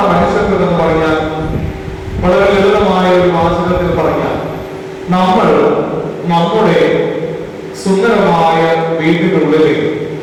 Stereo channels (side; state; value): both; identical; correlation 1.00